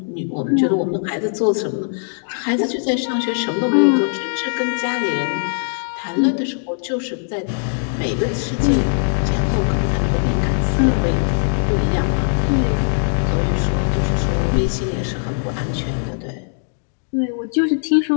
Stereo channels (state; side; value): silent; right; digital silence